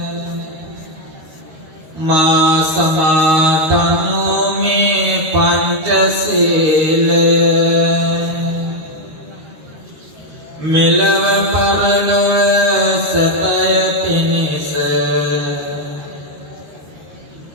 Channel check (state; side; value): late; left; 13 ms